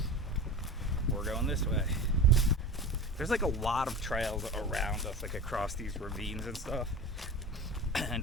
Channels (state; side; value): normal; both; correlation 0.31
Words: we're going this way. There's like a lot of trails around us, like across these ravines and stuff.